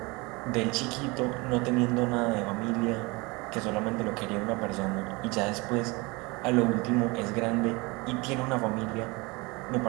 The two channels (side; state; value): left; quieter; 25.6 dB